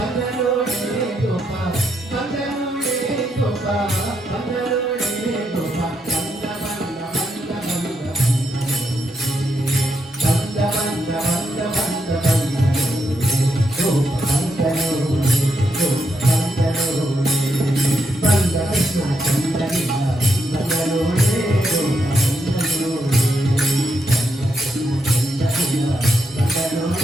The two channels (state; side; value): normal; both; correlation 0.81